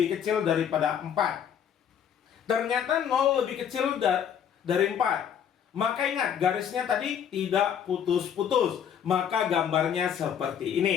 kecil daripada 4? Ternyata 0 lebih kecil dari 4. Maka ingat, garisnya tadi tidak putus-putus. Maka gambarnya seperti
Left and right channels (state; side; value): quieter; right; 8.6 dB